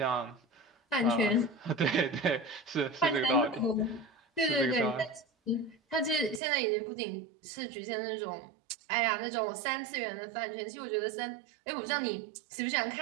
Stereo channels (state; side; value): drops out; left; at 6.4 s